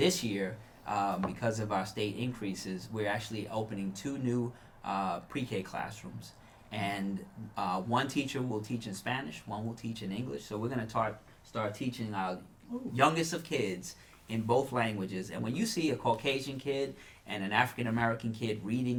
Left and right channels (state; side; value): identical; both; correlation 1.00